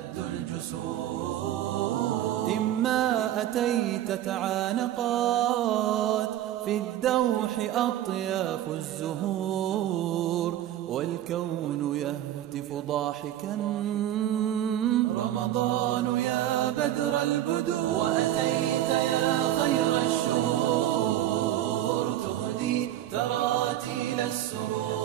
الجسور. إما أتيت تعانقات في الدوح أطياف الزهور، والكون يهتف ضاحكا رمضان يا بدر البدور. وأتيت يا خير الشهور تهدي تراتيل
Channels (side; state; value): left; quieter; 12.5 dB